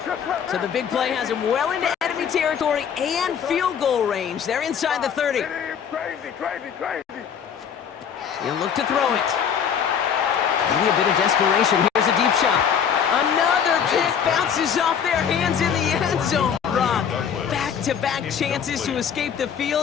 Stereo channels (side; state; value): right; quieter; 7.7 dB